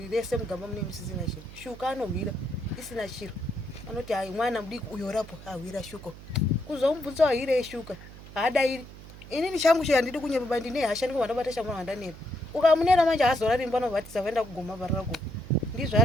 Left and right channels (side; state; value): right; noise; hum, 16 dB below the sound